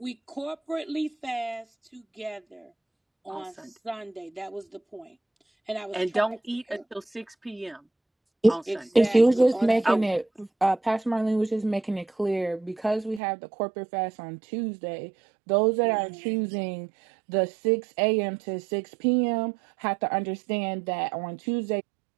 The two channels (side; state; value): left; drops out; at 13.2 s